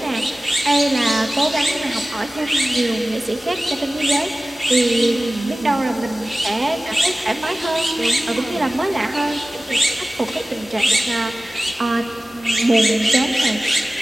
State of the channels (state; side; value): normal; both; correlation 0.96